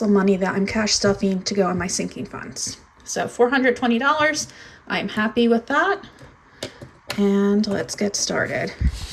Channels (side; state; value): both; identical; correlation 1.00